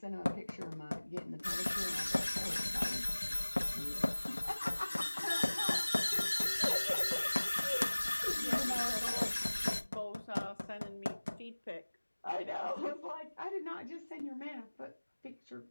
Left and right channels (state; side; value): inverted; both; correlation -1.00